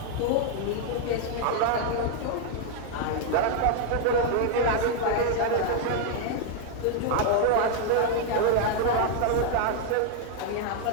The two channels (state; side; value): different; both; correlation 0.00